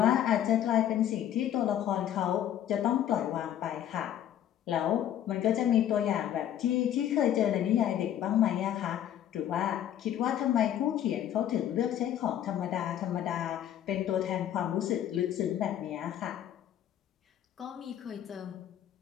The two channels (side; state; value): right; quieter; 10.9 dB